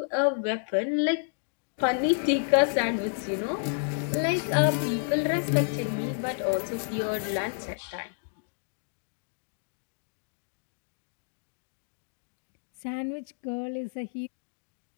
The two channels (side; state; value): right; silent; digital silence